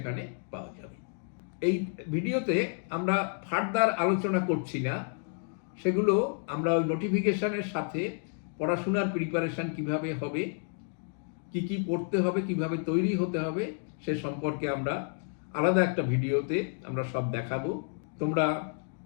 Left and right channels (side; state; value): right; silent; 56 dB below the other